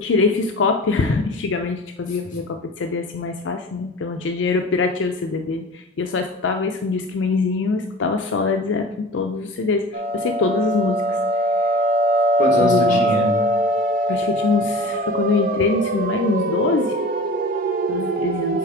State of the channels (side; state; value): both; normal; correlation 0.38